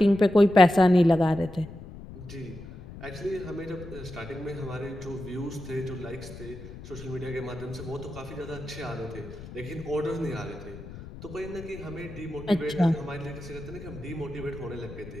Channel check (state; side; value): noise; left; rumble, 14 dB below the sound